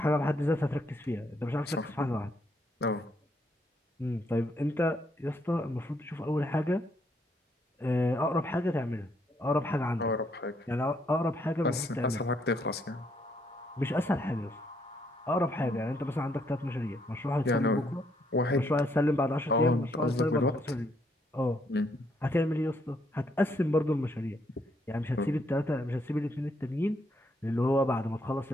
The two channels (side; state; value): both; normal; correlation 0.72